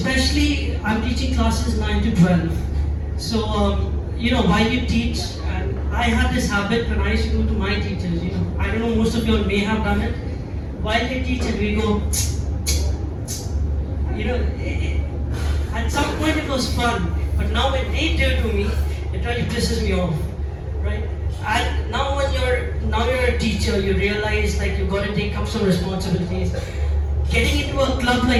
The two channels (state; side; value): identical; both; correlation 1.00